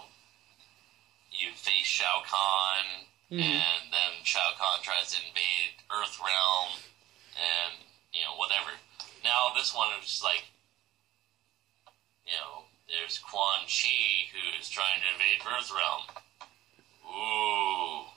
you face Shao Kahn, and then Shao Kahn tries to invade Earthrealm, and whatever. Now this one is just there's Quan Chi who's trying to invade Earthrealm. Ooh.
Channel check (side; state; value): left; quieter; 15.4 dB